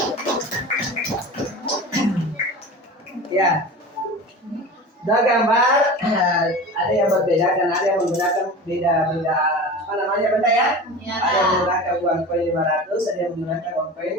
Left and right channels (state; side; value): normal; both; correlation 0.33